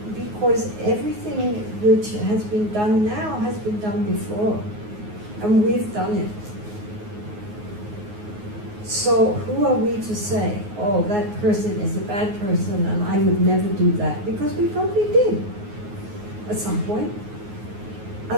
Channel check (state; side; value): late; left; 9.6 ms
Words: because everything which has been done now has been done before. And we've done it. So who are we to say, oh, that person is a bad person and I would never do that? Because we probably did at some point.